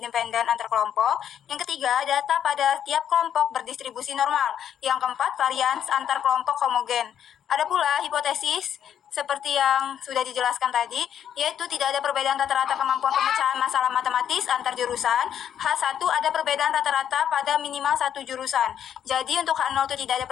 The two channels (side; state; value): right; quieter; 9.4 dB